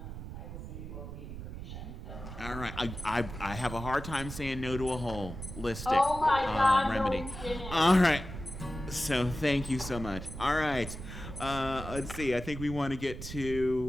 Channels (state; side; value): noise; right; rumble, 9 dB below the sound